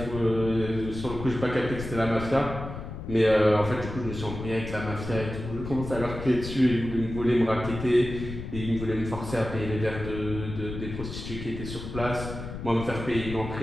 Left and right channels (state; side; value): noise; left; rumble, 8 dB below the sound